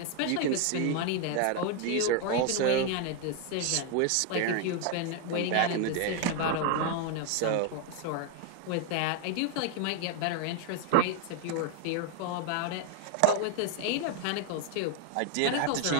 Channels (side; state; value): both; different; correlation 0.01